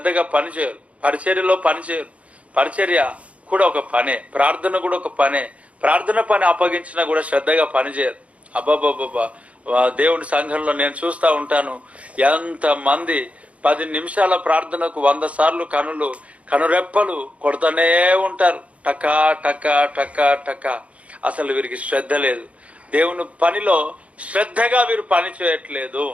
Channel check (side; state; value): left; late; 0.064 ms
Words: పని చేయరు, పరిచర్యలో పని చేయరు. పరిచర్య కూడా ఒక పనే, ప్రార్థన కూడా ఒక పనే. ప్రార్థన పని అప్పగించినా కూడా శ్రద్ధగా పని చేయరు. అబ్బాబ్బాబ్బా, దేవుని సంఘంలో నేను చూస్తూ ఉంటాను, ఎంతమంది 10 నిమిషాల ప్రార్థనకు 100 సార్లు కనురెప్పలు కొడుతూనే ఉంటారు. టకా టకా టకా టకా. అసలు వీరికి శ్రద్ధ లేదు. దేవుని పనిలో శ్రద్ధగా వీరు పని చేయట్లేదు.